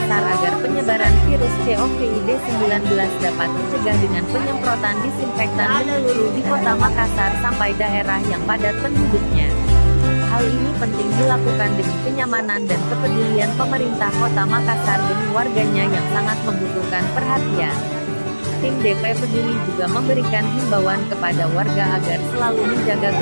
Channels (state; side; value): inverted; both; correlation -1.00